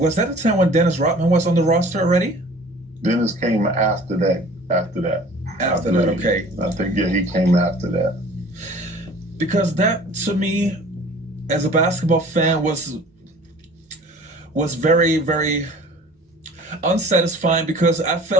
that the time when Dennis Rodman was on the roster already? Dennis came after that. After that, okay. I think, yeah, he came after that. Because that, to me, as a basketball fan, was very, very unsatisfying, because I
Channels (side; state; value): both; normal; correlation 0.47